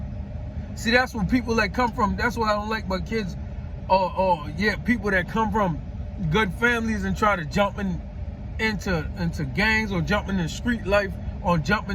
See, that's when people that come from, that's what I don't like about kids, people that come from good families and try to jump into gangs or jump into street life or jump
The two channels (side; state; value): both; identical; correlation 1.00